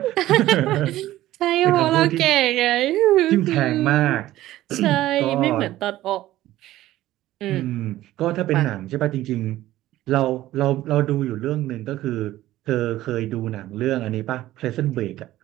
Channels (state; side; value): quieter; left; 15.1 dB